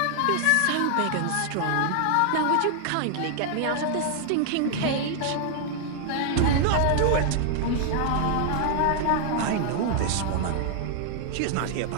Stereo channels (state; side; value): different; both; correlation 0.00